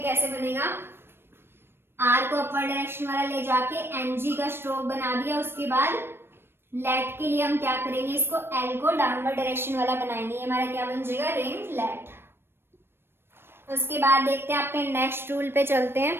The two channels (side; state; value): left; late; 0.11 ms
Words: कैसे बनेगा, आर को अपवर्ड डायरेक्शन वाला ले जाके एन जी का स्ट्रोक बना दिया, उसके बाद लेट के लिए हम क्या करेंगे, इसको एल को डाउनवर्ड डायरेक्शन वाला बनाएंगे, ये हमारा क्या बन जाएगा, रिंग लेट। उसके बाद देखते हैं अपने नेक्स्ट रूल पे चलते